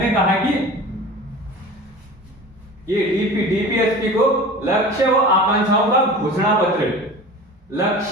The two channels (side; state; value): both; normal; correlation 0.37